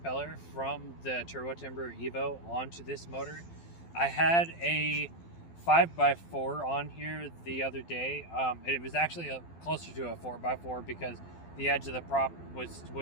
from the Turbo Timber Evo onto this motor. I had a 5x4 on here the other day. It was actually closer to a 4x4 because the edge of the prop was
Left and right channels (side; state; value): right; late; 12 ms